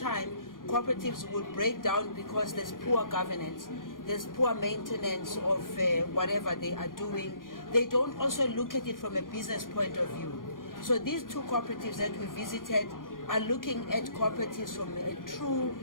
cooperatives would break down because there's poor governance, there's poor maintenance of whatever they are doing. They don't also look at it from a business point of view. So these 2 cooperatives that we visited are looking at cooperatives from a true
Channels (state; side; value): late; right; 0.90 ms